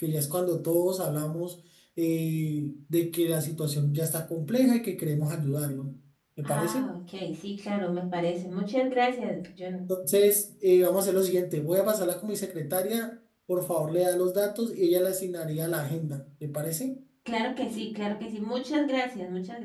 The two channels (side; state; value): both; identical; correlation 1.00